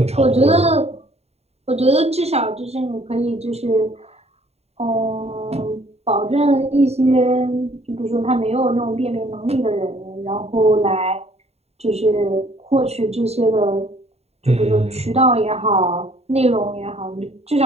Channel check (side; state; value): left; late; 0.30 ms